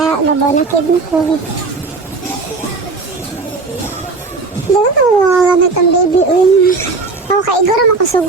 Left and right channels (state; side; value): quieter; left; 3.9 dB